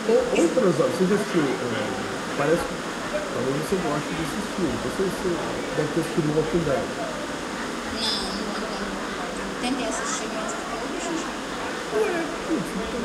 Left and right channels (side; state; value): both; identical; correlation 1.00